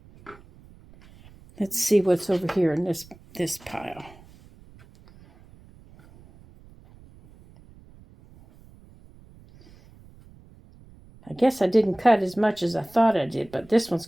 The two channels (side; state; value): right; noise; rumble, 25 dB below the sound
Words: Let's see what's over here in this pile. I guess I didn't cut as much as I thought I did, but this one's